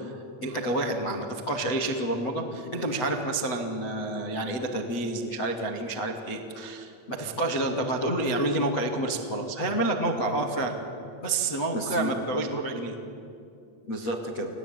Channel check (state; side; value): late; right; 8.1 ms